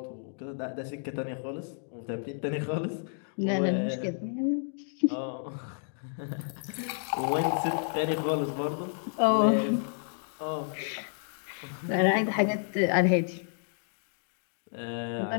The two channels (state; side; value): silent; right; digital silence